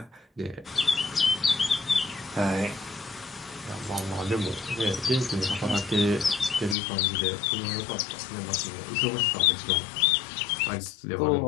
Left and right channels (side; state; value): right; drops out; at 6.8 s